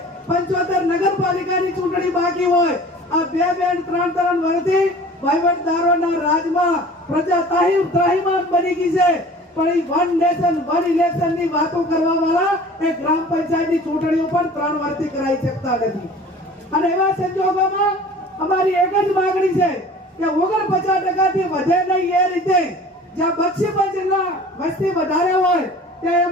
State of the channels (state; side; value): normal; both; correlation 0.44